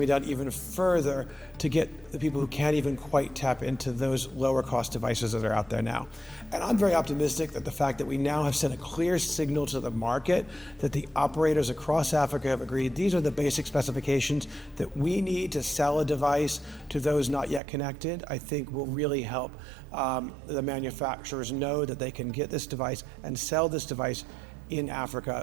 down even further to get the people who can't even quite tap into those lower cost devices that are out there now. And I'm very optimistic that the fact that we now have sent a clear signal to the market that the operators across Africa have agreed these are the basic specifications that we need to sell a device to those not yet connected, I think will really help the manufacturers know that they can get this device and sell this device in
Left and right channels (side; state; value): left; drops out; at 17.6 s